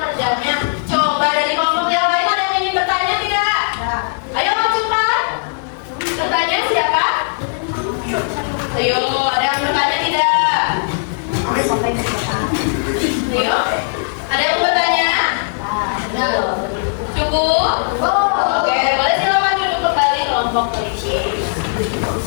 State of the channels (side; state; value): right; silent; digital silence